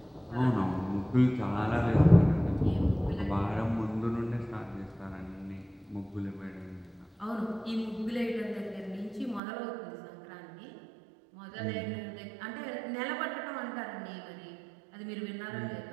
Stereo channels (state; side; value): drops out; left; at 9.4 s